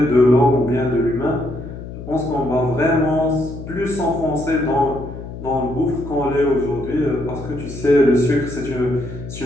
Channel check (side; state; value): left; noise; hum, 11 dB below the sound